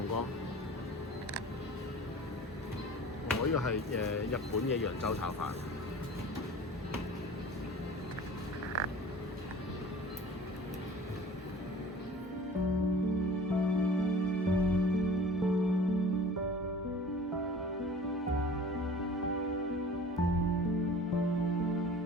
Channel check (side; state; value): both; normal; correlation 0.43